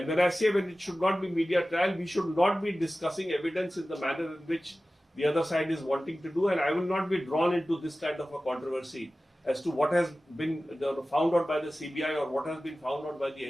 when I say when it should not be media trial, we should not be discussing evidence in the manner in which the other side is wanting to do. And I will not be drawn into this kind of a controversy as to what has been found out by the CBI or what has been found out by the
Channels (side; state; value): both; normal; correlation 0.96